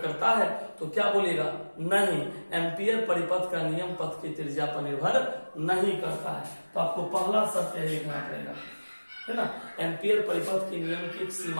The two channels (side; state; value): both; inverted; correlation -1.00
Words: है, तो क्या बोलेगा? नहीं, एम्पियर परिपथ का नियम पथ की त्रिज्या पर निर्भर नहीं करता है। तो आपको पहला सत्य लिखना पड़ेगा, है ना। एम्पियर परिपथ के नियम की